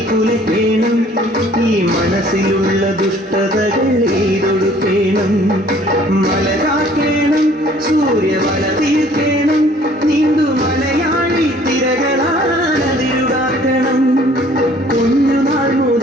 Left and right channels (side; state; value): both; normal; correlation 0.56